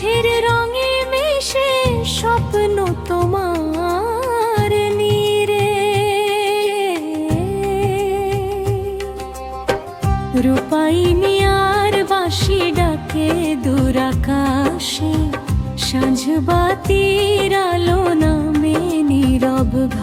রঙে মিশে স্বপ্ন তোমার নীরে রূপাই মিয়ার বাঁশি ডাকে দূর আকাশে সাঁঝ বাতির আলো নামে নীরব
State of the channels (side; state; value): both; identical; correlation 1.00